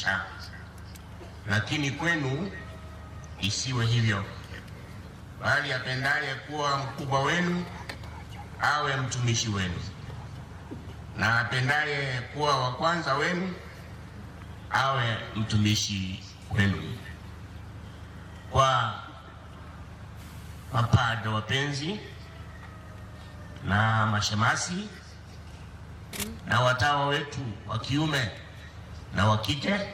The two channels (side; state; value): both; identical; correlation 1.00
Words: Lakini kwenu isiwe hivyo, bali apendaye kuwa mkubwa wenu awe mtumishi wenu, na apendaye kuwa wa kwanza wenu awe mtumishi wenu. Kwa mapadre wapenzi na mashemasi na watawa wetu wa kiume na wa kike,